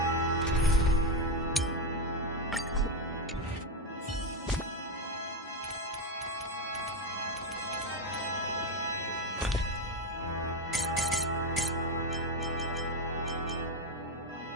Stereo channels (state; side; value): normal; both; correlation 0.10